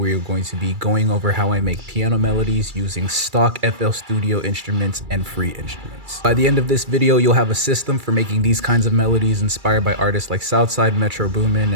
are going to be going over how I make piano melodies using stock FL Studio instruments and free instruments. By the end of this video you'll have a system for making these kinds of melodies inspired by artists like Southside, Metro Boomin,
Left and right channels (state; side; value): late; left; 2.3 ms